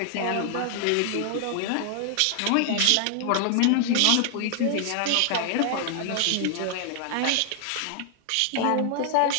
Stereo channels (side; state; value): both; different; correlation 0.00